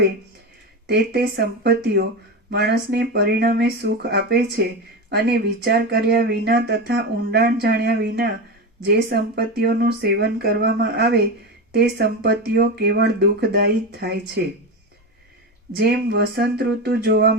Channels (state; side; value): normal; both; correlation 0.19